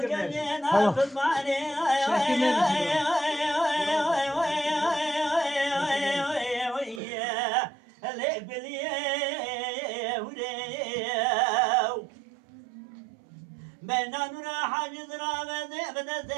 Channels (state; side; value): drops out; left; at 7.0 s